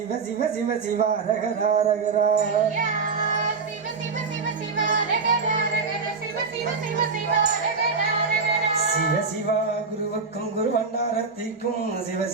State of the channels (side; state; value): left; quieter; 4.8 dB